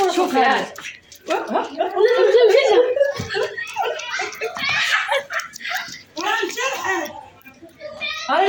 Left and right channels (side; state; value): both; identical; correlation 1.00